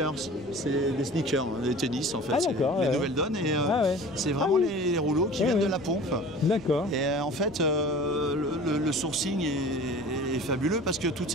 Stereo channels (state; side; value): noise; left; rumble, 22 dB below the sound